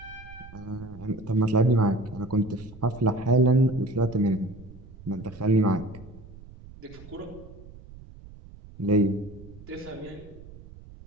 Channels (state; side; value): noise; right; rumble, 18 dB below the sound